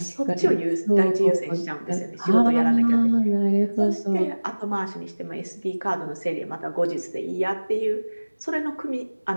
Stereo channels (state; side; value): inverted; both; correlation -1.00